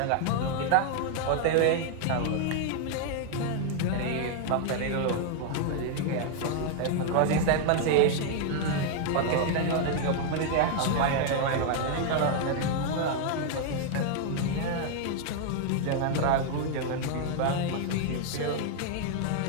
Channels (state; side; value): different; both; correlation 0.00